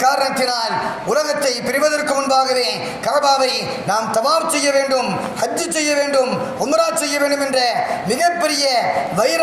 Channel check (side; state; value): both; identical; correlation 1.00